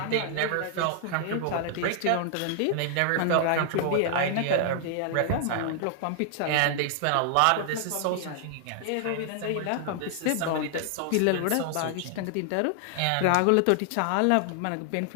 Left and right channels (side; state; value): both; different; correlation 0.00